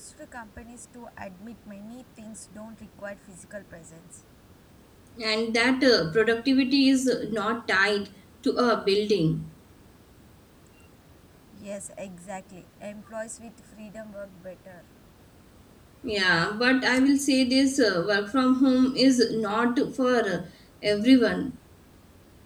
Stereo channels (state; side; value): identical; both; correlation 1.00